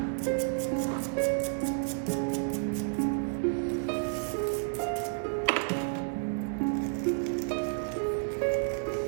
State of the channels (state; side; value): silent; left; digital silence